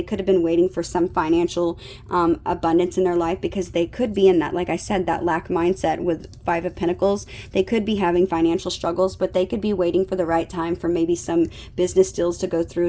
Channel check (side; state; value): both; identical; correlation 1.00